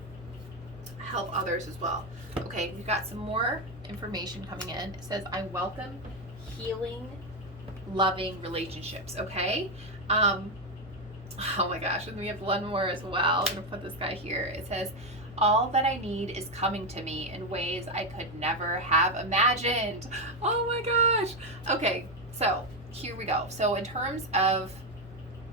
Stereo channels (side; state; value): both; normal; correlation 0.08